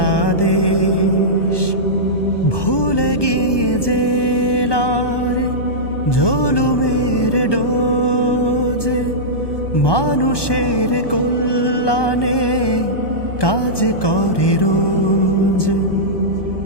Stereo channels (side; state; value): right; late; 1.2 ms